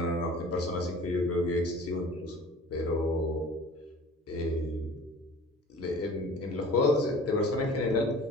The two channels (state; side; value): normal; both; correlation 0.44